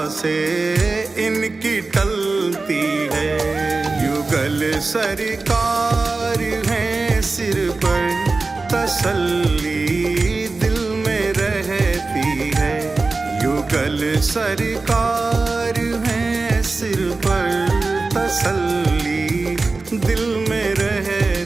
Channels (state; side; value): quieter; left; 3.7 dB